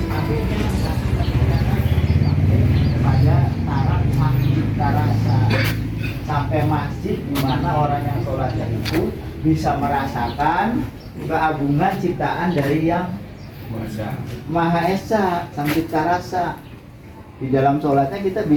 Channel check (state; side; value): identical; both; correlation 1.00